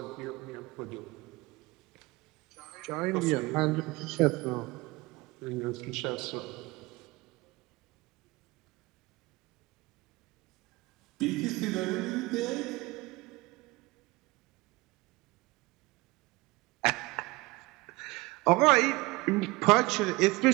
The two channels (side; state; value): left; quieter; 22.7 dB